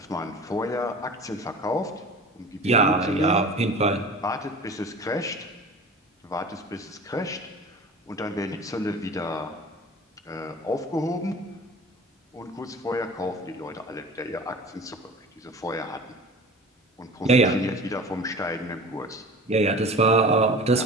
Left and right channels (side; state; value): both; normal; correlation 0.39